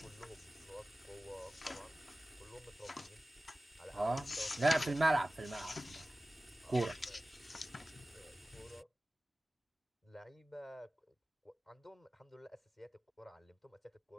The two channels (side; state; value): both; normal; correlation 0.96